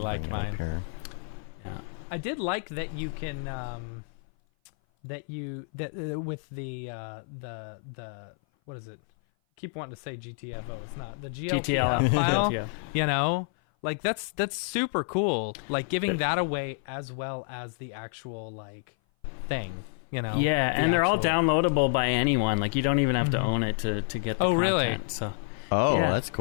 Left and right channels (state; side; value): silent; right; 56 dB below the other